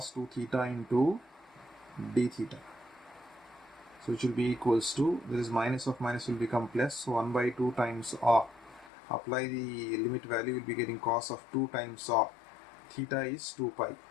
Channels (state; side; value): drops out; right; at 8.9 s